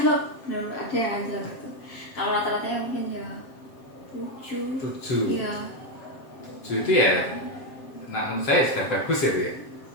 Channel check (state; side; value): late; right; 7.4 ms